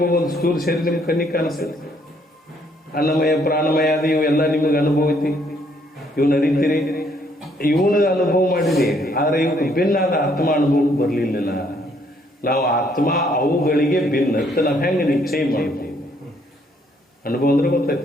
ಒಂದು ಸ್ಥೂಲ ಶರೀರ ನಿಮ್ಗೆ ಕಣ್ಣಿಗೆ ಕಾಣಿಸ್ತದೆ. ಅನ್ನಮಯ ಪ್ರಾಣಮಯ ಅದು ಇವೆಲ್ಲ ನಿಮಗೆ ಅನುಭವ ಐತಿ, ಇವನ್ನ ಅರಿತೀರಿ, ಇವನ ಅನುಭವ ಮಾಡಿರಿ. ಆದ್ರೆ ಇವಕ್ಕೆ ಭಿನ್ನಾದ ಆತ್ಮ ಅನುಭವಕ್ಕೆ ಬರಲಿಲ್ಲ. ನಾವು ಆತ್ಮ ಅವುಗಳಿಗೆ ಭಿನ್ನ ನಾವು ಹೆಂಗೆ ನಿಶ್ಚಯ ಮಾಡ್ತೀವಿ? ಅನುಭವ ಅಂದ್ರೆ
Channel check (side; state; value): both; normal; correlation 0.68